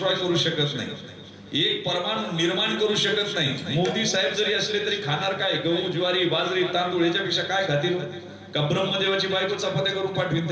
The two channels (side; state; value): both; identical; correlation 1.00